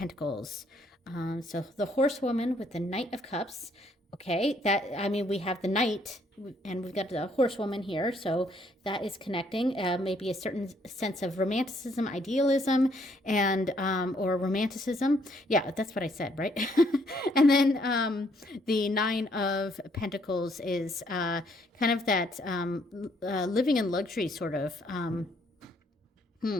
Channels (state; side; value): normal; both; correlation 0.68